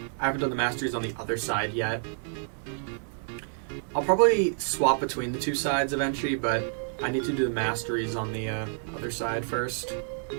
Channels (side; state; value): left; silent; 59 dB below the other